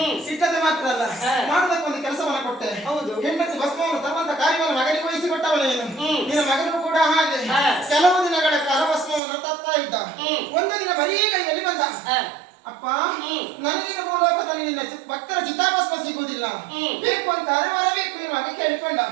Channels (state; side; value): drops out; left; at 9.2 s